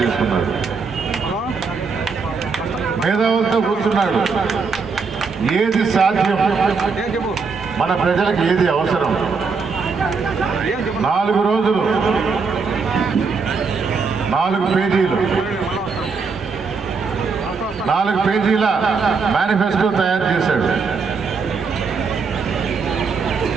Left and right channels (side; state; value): left; quieter; 4.9 dB